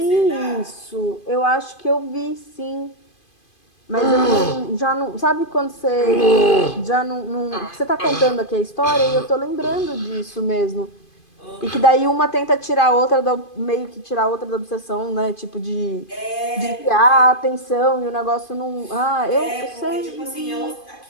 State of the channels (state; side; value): late; right; 2.5 ms